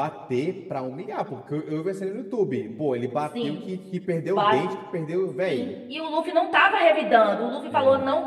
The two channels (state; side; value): identical; both; correlation 1.00